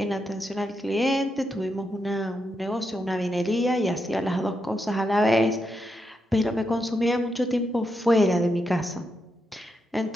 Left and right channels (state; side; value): normal; both; correlation 0.83